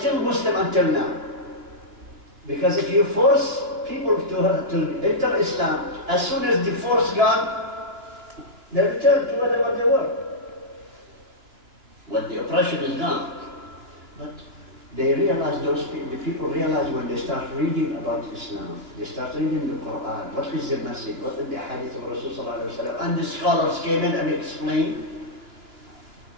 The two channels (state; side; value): late; left; 2.9 ms